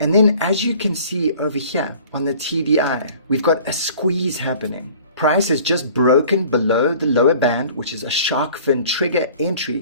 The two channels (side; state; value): both; inverted; correlation -0.50